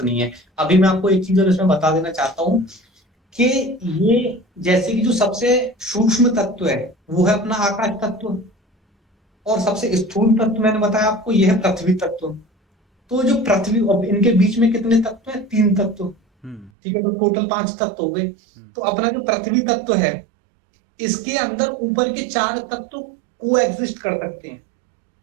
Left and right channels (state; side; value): drops out; left; at 16.7 s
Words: नहीं है। अभी मैं आपको एक चीज और इसमें बता देना चाहता हूँ कि ये जैसे कि जो सबसे सूक्ष्म तत्व है वो है अपना आकाश तत्व, और सबसे स्थूल तत्व मैंने बताया आपको ये है पृथ्वी तत्व। तो जो पृथ्वी, अब इनके बीच में कितने तत्व है, 3 तत्व। हम्म। ठीक है, तो टोटल 5 तत्व हो गए। हम्म। तो अपना जो पृथ्वी तत्व है इसके अंदर ऊपर के 4 तत्व को एग्जिस्ट कर सकते हैं।